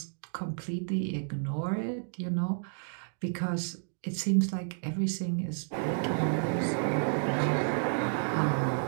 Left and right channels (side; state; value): left; silent; digital silence